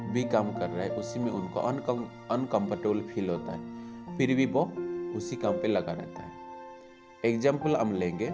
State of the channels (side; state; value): both; identical; correlation 1.00